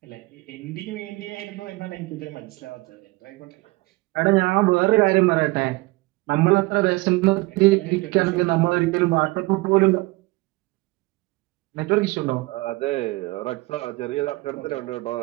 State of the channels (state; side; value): quieter; left; 22.5 dB